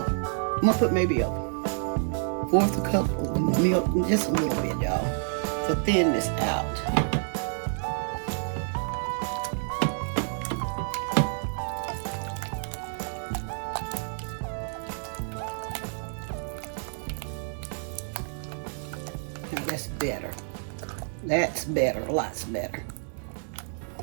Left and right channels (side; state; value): left; silent; 59 dB below the other